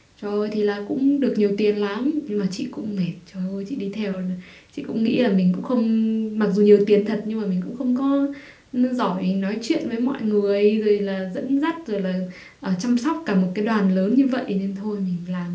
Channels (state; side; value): identical; both; correlation 1.00